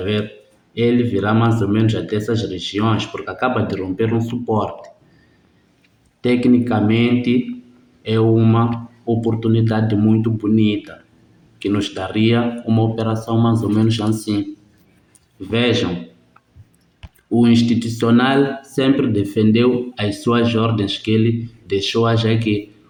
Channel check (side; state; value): both; identical; correlation 1.00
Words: ver? Ele virá mais ou menos até essas regiões, porque acaba de romper um suporte. Tecnicamente, é uma oportunidade muito bonita, que nos daria uma operação mais ou menos assim. Vejam, o institucional sempre defendeu as suas ordens que ele deixou aqui.